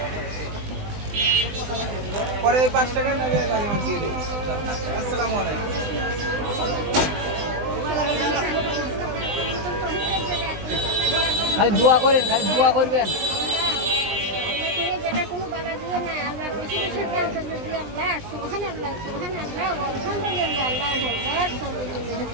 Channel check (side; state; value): left; late; 20 ms